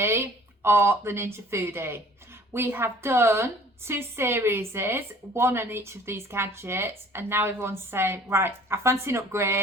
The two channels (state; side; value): normal; both; correlation 0.51